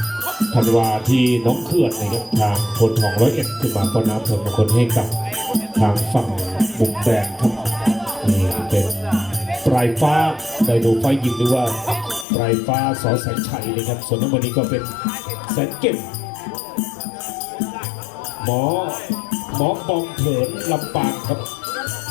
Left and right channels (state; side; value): drops out; right; at 12.2 s